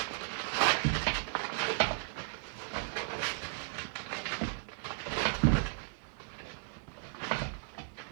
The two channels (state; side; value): silent; left; digital silence